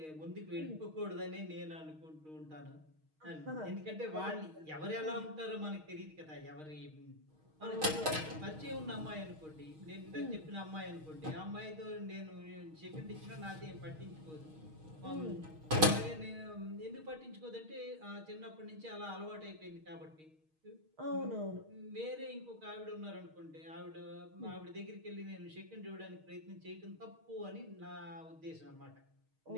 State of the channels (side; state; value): left; late; 6.4 ms